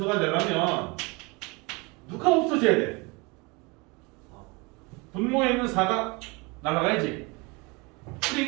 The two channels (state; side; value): quieter; left; 27.4 dB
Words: 되려면 누가 없어져야 돼? 분모에 있는 4가 날아가야지.